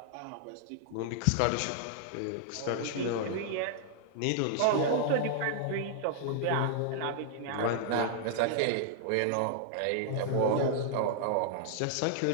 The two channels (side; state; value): both; different; correlation -0.01